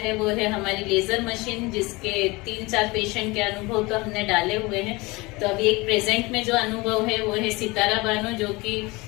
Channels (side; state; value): right; quieter; 23.8 dB